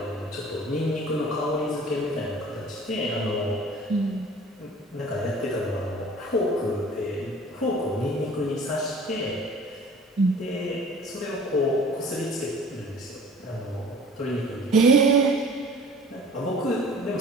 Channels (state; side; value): normal; both; correlation 0.47